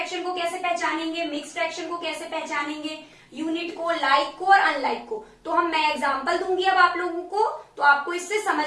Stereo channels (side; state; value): both; identical; correlation 1.00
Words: को कैसे पहचानेंगे, मिक्स फ्रैक्शन को कैसे पहचानेंगे, यूनिट को, लाइक को और अनलाइक को। तो मैं एग्जांपल दूंगी अब आप लोगों को, तो आपको इससे